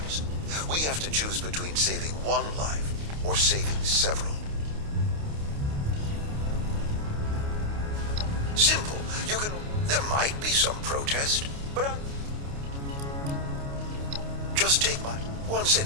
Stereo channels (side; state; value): left; late; 29 ms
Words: we have to choose between saving one life or saving several. Simple. You can... There might be some protest, but just take my once in